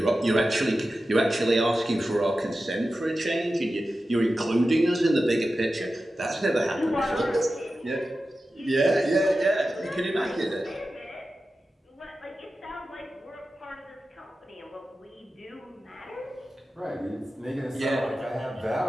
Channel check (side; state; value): both; normal; correlation 0.93